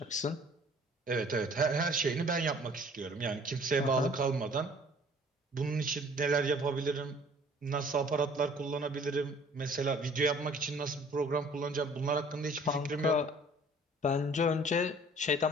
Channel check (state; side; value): normal; both; correlation 0.53